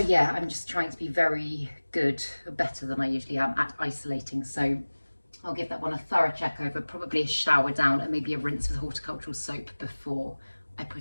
I'm just trying to be very good, better than I usually am at isolating. So I'll give that one a thorough check over, probably a shower down and maybe a rinse with horticultural soap before I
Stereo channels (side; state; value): both; inverted; correlation -1.00